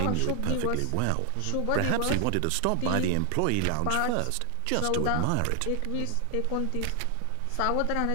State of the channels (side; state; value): both; different; correlation 0.00